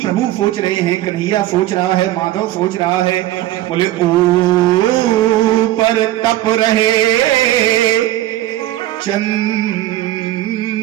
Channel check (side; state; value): left; quieter; 14.7 dB